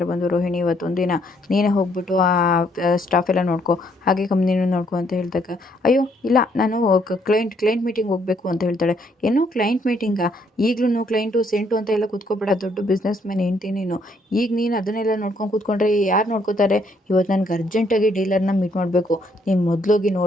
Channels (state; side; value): normal; both; correlation 0.69